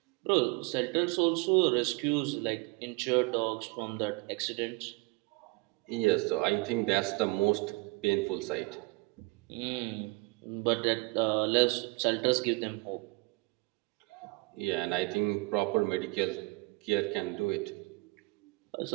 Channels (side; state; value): left; quieter; 26.2 dB